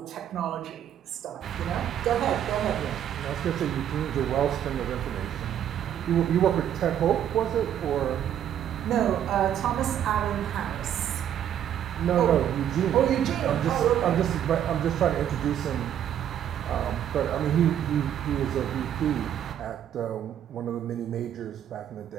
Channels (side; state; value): left; quieter; 10.1 dB